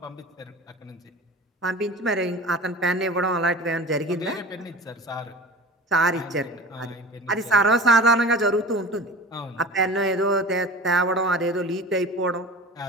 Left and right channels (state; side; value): normal; both; correlation 0.36